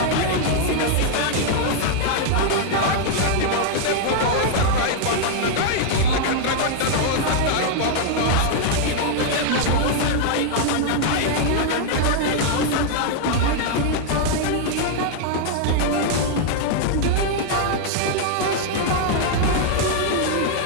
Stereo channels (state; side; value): different; both; correlation -0.01